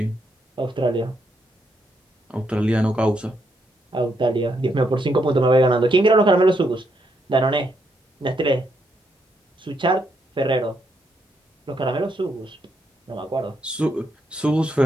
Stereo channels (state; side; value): normal; both; correlation 0.78